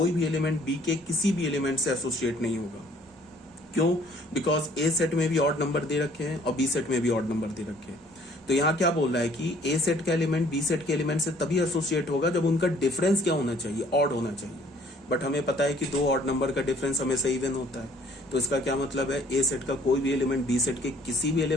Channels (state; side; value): normal; both; correlation 0.59